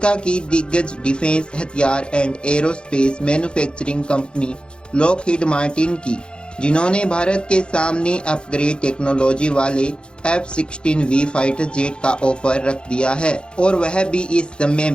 की दिग्गज डिफेंस हथियार and aerospace manufacturing company Lockheed Martin की, जिन्होंने भारत के सामने अपग्रेड टेक्नोलॉजी वाले F-16V फाइटर जेट का ऑफर रख दिया है। और वह भी इस समय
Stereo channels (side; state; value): right; late; 0.053 ms